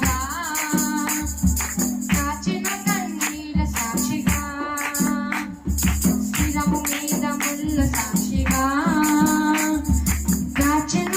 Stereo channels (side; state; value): both; identical; correlation 1.00